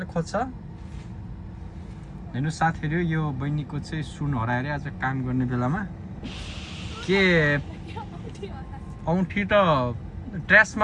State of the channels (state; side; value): identical; both; correlation 1.00